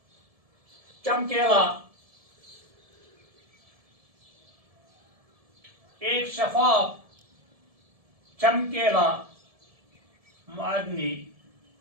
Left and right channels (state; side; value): late; left; 1.7 ms